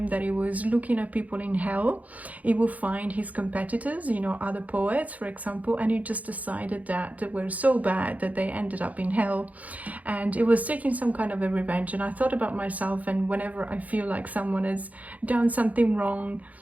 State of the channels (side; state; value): left; late; 0.074 ms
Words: that he was looking at people in hell, he would find his competitors, you know, other poets, for example, and he just decided that they were so bad that they ended up in hell. And it was taking some kind of a revenge. And I thought about myself, and whenever I feel like someone has done something wrong,